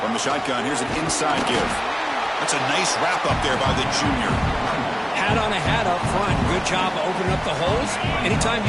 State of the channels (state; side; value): identical; both; correlation 1.00